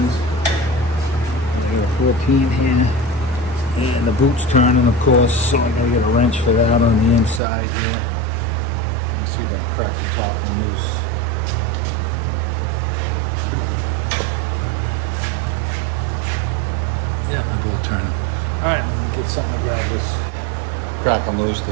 I got a 14 here, and the boot's turning, of course, so I'm gonna get a wrench for that on the inside here. Let me see if I can crack the top one loose. Yeah, they're both turning. All right, let me get something to grab this. Crack them loose,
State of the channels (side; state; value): left; drops out; at 7.4 s